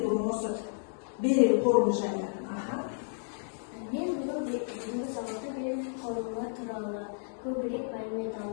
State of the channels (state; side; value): silent; right; digital silence